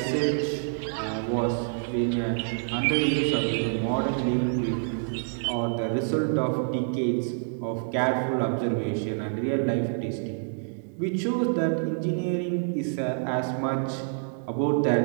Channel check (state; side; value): silent; left; digital silence